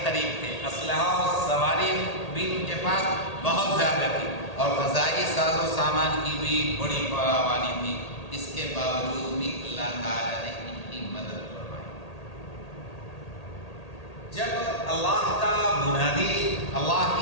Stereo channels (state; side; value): late; right; 1.8 ms